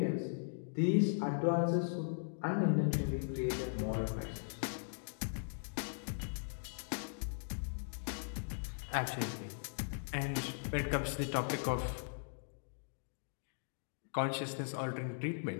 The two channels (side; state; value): right; silent; digital silence